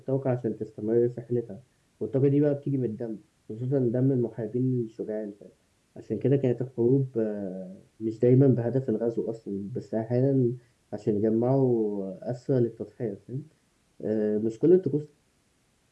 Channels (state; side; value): identical; both; correlation 1.00